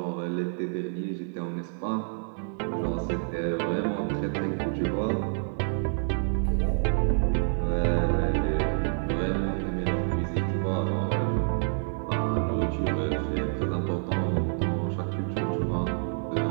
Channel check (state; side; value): silent; left; digital silence